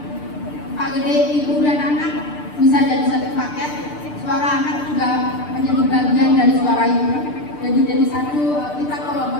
Pak Gede, ibu dan anak bisa jadi satu paket. Suara anak juga menjadi bagian dari suara ibu. Jadi satu, kita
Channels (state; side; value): late; right; 6.7 ms